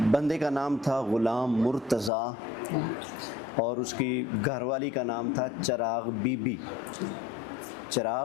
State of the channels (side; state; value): right; drops out; at 2.1 s